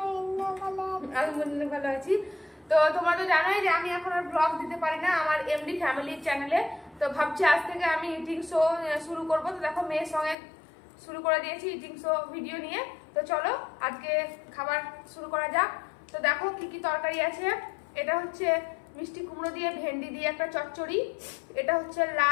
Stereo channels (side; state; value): right; drops out; at 10.4 s